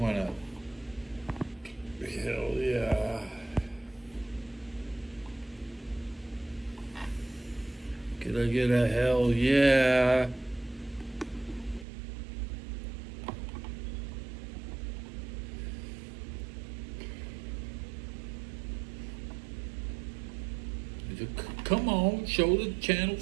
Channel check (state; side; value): drops out; left; at 11.9 s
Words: up. Hell yeah. Could I get a hell yeah? Come on, show the channel